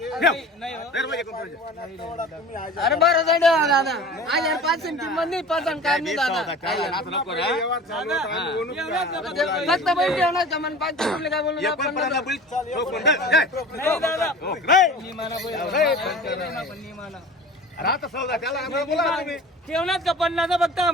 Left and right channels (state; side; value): normal; both; correlation 0.39